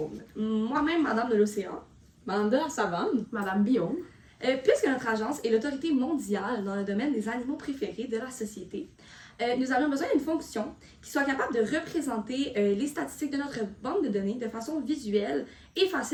Moi-même, Madame de l'Océan. Madame de la Savane. Madame Bion. Puisque notre agence est l'autorité mondiale dans le domaine des animaux préférés de la société, nous avons besoin d'une fonction qui soit capable de représenter les statistiques de notre banque de données de façon visuelle et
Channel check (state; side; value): identical; both; correlation 1.00